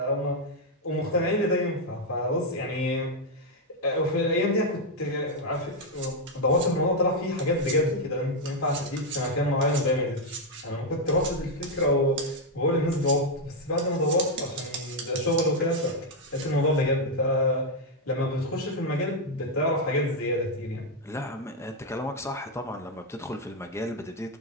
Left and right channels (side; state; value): both; normal; correlation 0.02